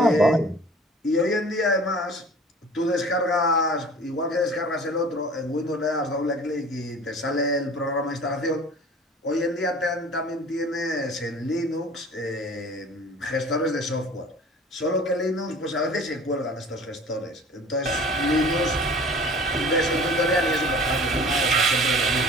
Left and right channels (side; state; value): both; normal; correlation 0.45